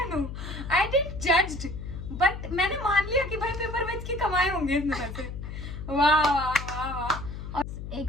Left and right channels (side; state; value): left; noise; hum, 8 dB below the sound